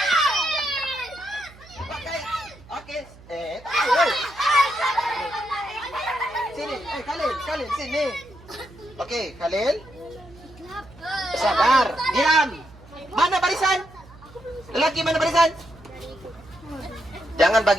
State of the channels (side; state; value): right; noise; hum, 22 dB below the sound